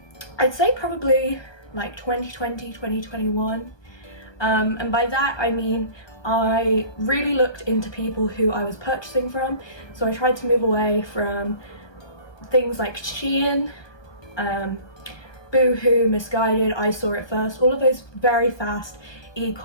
say probably like 2020, 2021. And by that I mean I really looked into people who I was purchasing from. So I tried to move away from things like Shein, Boohoo, Missguided, I Saw It First, all of those very fast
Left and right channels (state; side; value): late; right; 1.2 ms